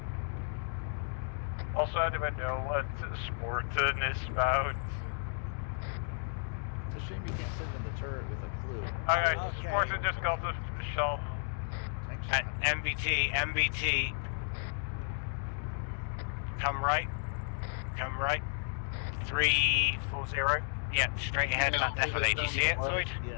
Also, do I know what Sporton is about? It's a shame you can't send them the turret with a clue. Okay, Sporton just got the shell. Tank shot. MBT. Come right. 340. Yeah, straight ahead, that definitely. Do you see it, Lloyd?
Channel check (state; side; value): silent; right; digital silence